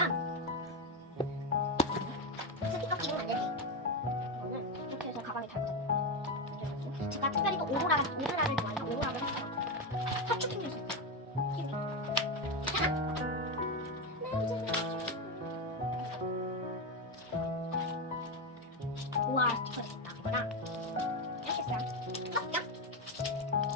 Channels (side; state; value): both; normal; correlation 0.11